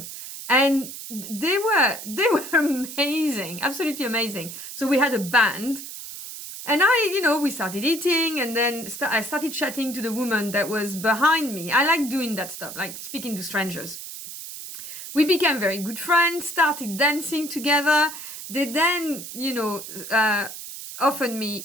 And they were amazing, absolutely amazing. So we had a band. And we started eating, and then I started chatting to the woman that was behind me. I like doing that stuff, like speaking to strangers. We became very good friends, started dancing together. They then, offered me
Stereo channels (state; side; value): noise; right; hiss, 10 dB below the sound